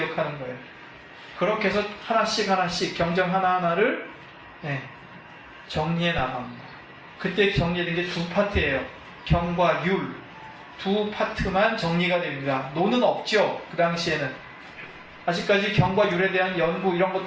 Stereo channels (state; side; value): identical; both; correlation 1.00